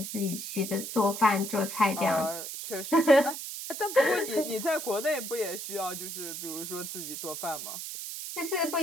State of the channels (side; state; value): right; noise; hiss, 7 dB below the sound